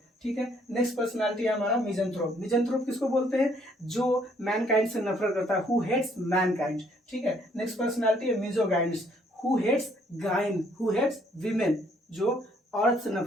ठीक है। नेक्स्ट पर्सनालिटी है हमारा मिजंथ्रोप। मिजंथ्रोप किसको बोलते हैं? जो मैनकाइंड से नफरत करता है, हु हेट्स मैनकाइंड, ठीक है। नेक्स्ट पर्सनालिटी है misogynists, who hates gyne, who hates women, जो औरत से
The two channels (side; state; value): both; normal; correlation 0.66